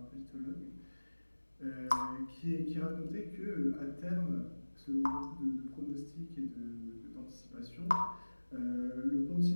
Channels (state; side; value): inverted; both; correlation -1.00